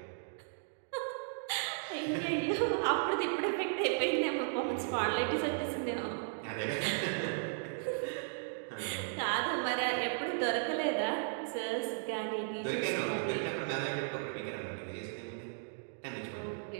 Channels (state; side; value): silent; left; digital silence